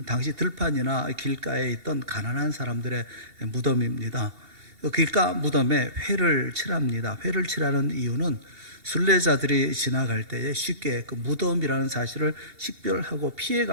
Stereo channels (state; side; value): late; left; 2.7 ms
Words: 당시 들판이나 길가에 있던 가난한 사람들의 무덤입니다. 길가 무덤에 회를 칠합니다. 회를 칠하는 이유는 순례자들이 지나갈 때에 쉽게 그 무덤이라는 사실을 식별하고